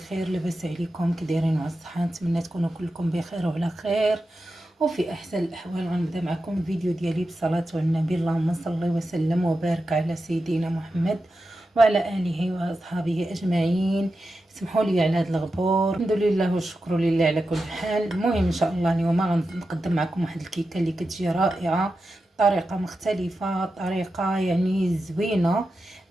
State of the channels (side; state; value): both; normal; correlation 0.90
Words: لاباس عليكم؟ كي دايرين على الصحه؟ نتمنى تكونوا كلكم بخير وعلى خير وفي احسن الاحوال. غنبدا معكم الفيديو ديالي بالصلاه على النبي، اللهم صل وسلم وبارك على سيدنا محمد وعلى اله واصحابه اجمعين. سمحوا لي على هذا الغبور. الحمد لله والشكر لله على كل حال. المهم ان شاء الله اليوم غنقدم معكم واحد الكيكه اللي كتجي رائعه، طريقه مختلفه، طريقه يعني زوينه.